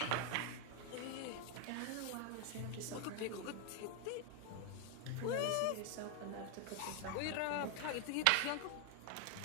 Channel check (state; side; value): different; both; correlation 0.01